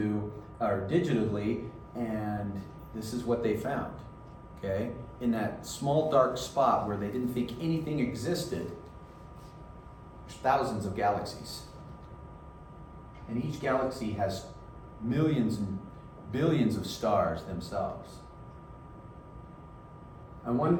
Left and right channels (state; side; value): identical; both; correlation 1.00